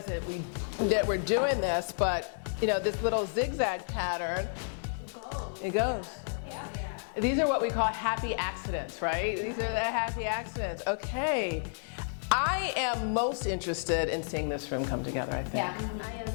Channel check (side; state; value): right; silent; digital silence